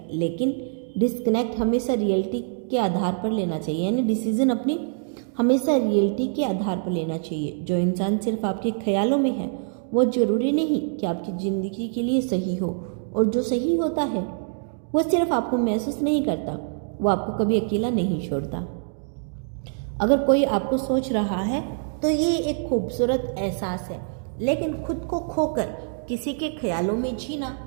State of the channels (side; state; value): left; silent; digital silence